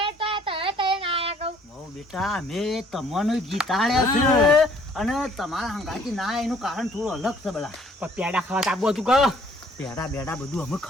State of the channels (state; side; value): normal; both; correlation 0.60